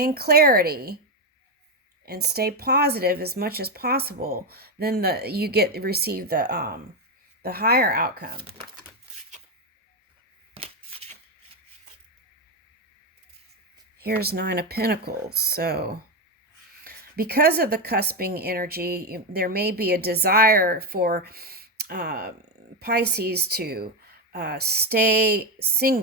clarity and stay positive as much as possible, then you receive the higher outcome. Here's Nine of Pentacles. So because of the cusping energy, there may be a desire for Pisces to stay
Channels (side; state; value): both; normal; correlation 0.09